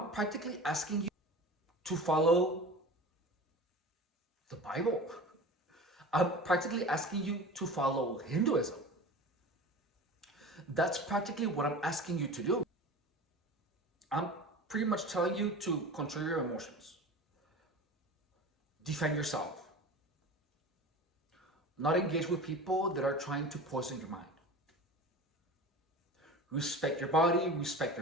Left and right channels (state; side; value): normal; both; correlation 0.35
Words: practically asking you to follow the Bible. I'm practically asking you to follow Hinduism. That's practically what I'm asking you to do. I'm pretty much telling you to control your emotions, defend yourself, not engage with people that are trying to poison your mind. Respect your body, respect